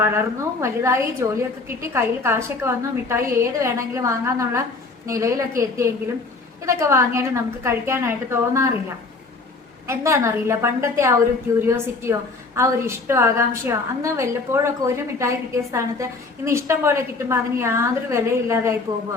വളർന്നു വലുതായി ജോലിയൊക്കെ കിട്ടി കയ്യിൽ കാശൊക്കെ വന്നു, മിഠായി ഏത് വേണമെങ്കിലും വാങ്ങാന്നുള്ള നിലയിലൊക്കെ എത്തിയെങ്കിലും ഇതൊക്കെ വാങ്ങിയാലും നമുക്ക് കഴിക്കാനായിട്ട് തോന്നാറില്ല. എന്താണെന്നറിയില്ല, പണ്ടത്തെ ആ ഒരു ക്യൂരിയോസിറ്റിയോ ആ ഒരു ഇഷ്ടമോ ആകാംക്ഷയോ, അന്ന് വല്ലപ്പോഴൊക്കെ ഒരു മിഠായി കിട്ടിയ സ്ഥാനത്ത് ഇന്ന് ഇഷ്ടം പോലെ കിട്ടുമ്പോൾ അതിന് യാതൊരു വിലയില്ലാതായി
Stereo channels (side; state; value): right; quieter; 3.8 dB